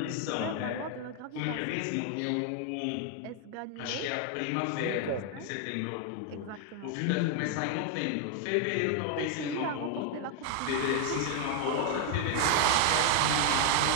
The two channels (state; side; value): different; both; correlation 0.00